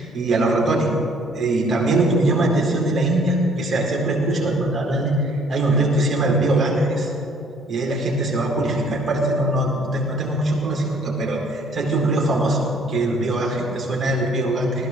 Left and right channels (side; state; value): both; normal; correlation 0.59